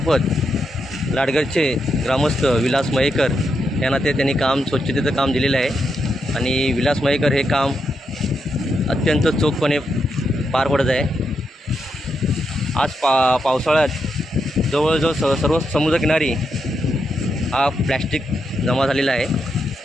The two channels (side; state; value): both; normal; correlation 0.83